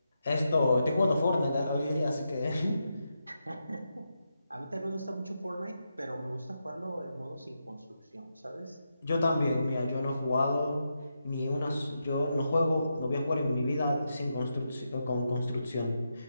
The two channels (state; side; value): inverted; both; correlation -0.86